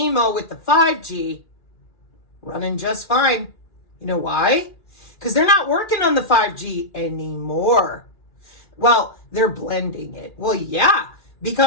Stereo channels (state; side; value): late; right; 2.3 ms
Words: with the 5G. Running just fine. You know why? Because they're not working on the 5G anymore. Well, they're blending it. Well, yeah,